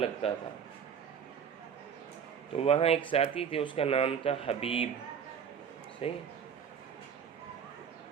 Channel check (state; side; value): quieter; left; 7.4 dB